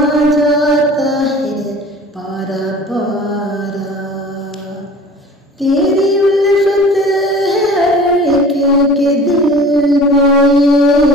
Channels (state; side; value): normal; both; correlation 0.43